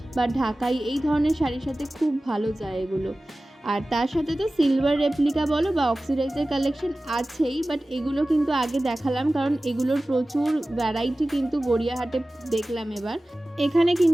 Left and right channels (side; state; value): both; normal; correlation 0.97